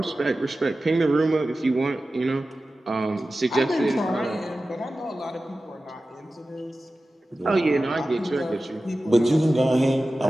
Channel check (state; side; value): normal; both; correlation 0.95